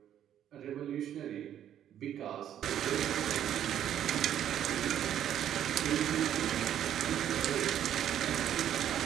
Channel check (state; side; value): quieter; left; 10.5 dB